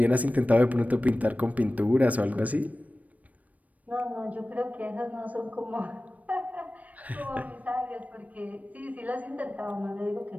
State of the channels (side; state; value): left; late; 0.071 ms